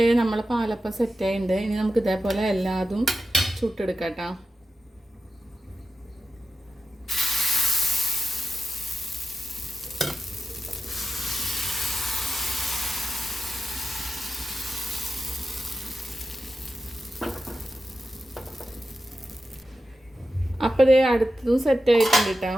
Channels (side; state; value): both; normal; correlation 0.92